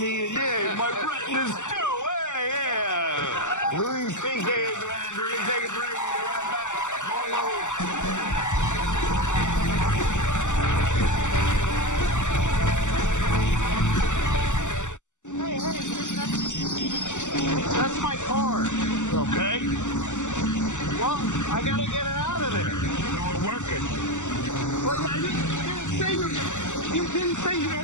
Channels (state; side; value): late; right; 0.84 ms